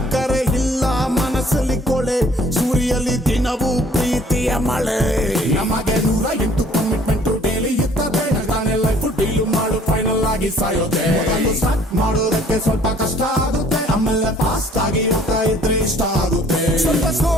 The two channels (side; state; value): both; normal; correlation 0.56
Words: ಇಲ್ಲ ಮನಸ್ಸಲ್ಲಿ ಕೊಳೆ ಸುರಿಯಲ್ಲಿ ದಿನವೂ ಪ್ರೀತಿಯ ಮಳೆ ನಮಗೆ 108 ಕಮಿಟ್ಮೆಂಟ್ ಡೈಲಿ ಇರ್ತದೆ ನಾನೇ ಲೈಫ್ ಡೀಲ್ ಮಾಡು ಫೈನಲ್ ಆಗಿ ಸಾಯೋದೆ ಸ್ಟಾರ್ಟ್ ಮಾಡೋದಕ್ಕೆ ಸ್ವಲ್ಪ ಕಷ್ಟ ಆಗುತ್ತೆ ಆಮೇಲೆ ಫಾಸ್ಟ್ ಆಗಿ ಹೋಗ್ತಾ ಇದ್ರೆ ಇಷ್ಟ ಆಗುತ್ತೆ ಸ್ವಲ್ಪ ಸ್ಲೋ